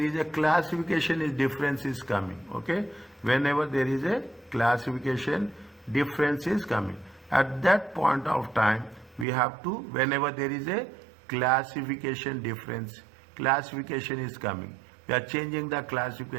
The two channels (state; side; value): drops out; left; at 9.2 s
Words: a classification is difference is coming. Okay? Whenever there is a classification difference is coming. At that point of time, we have to, whenever there is a classification difference, classification is coming. We are changing the